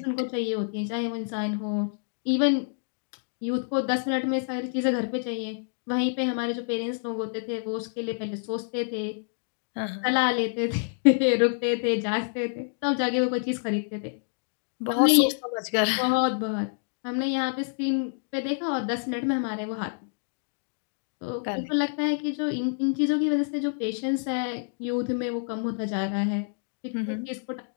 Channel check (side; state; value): right; silent; digital silence